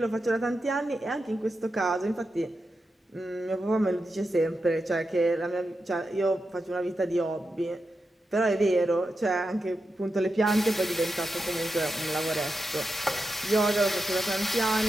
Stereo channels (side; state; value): both; normal; correlation 0.88